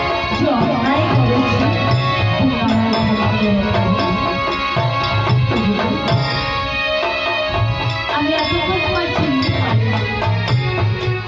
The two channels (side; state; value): both; identical; correlation 1.00